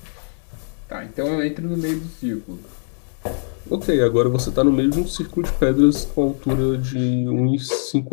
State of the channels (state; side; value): silent; right; 60 dB below the other